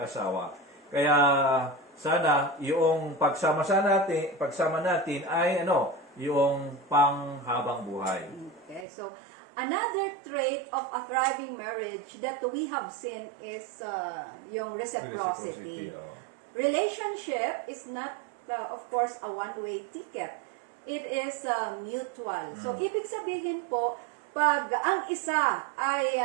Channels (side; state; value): left; drops out; at 8.8 s